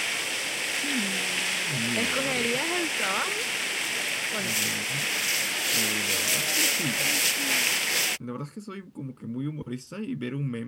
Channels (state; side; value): identical; both; correlation 1.00